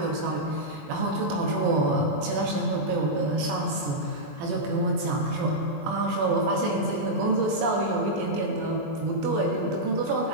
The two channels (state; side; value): late; left; 21 ms